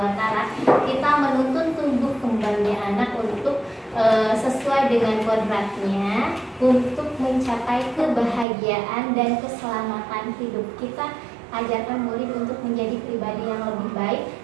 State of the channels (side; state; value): left; drops out; at 8.5 s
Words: Kita menuntun tumbuh kembangnya anak untuk sesuai dengan kodratnya untuk mencapai kebahagiaan dan keselamatan hidup. Kita ajarkan murid untuk menjadi pribadi yang lebih baik.